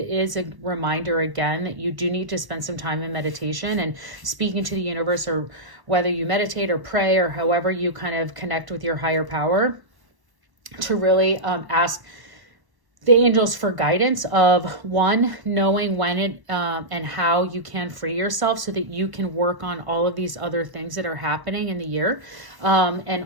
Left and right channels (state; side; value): late; left; 1.1 ms